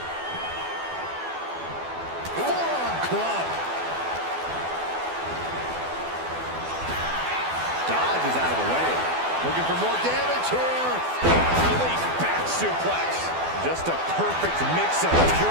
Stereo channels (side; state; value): left; late; 12 ms